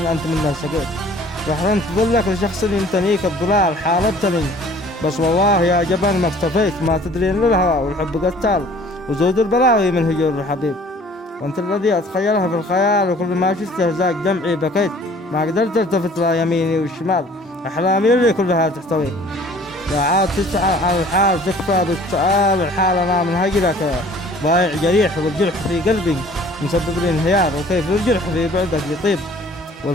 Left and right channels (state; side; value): normal; both; correlation 0.52